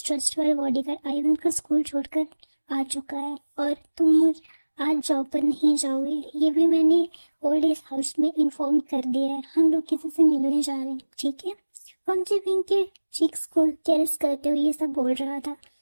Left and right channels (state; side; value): inverted; both; correlation -1.00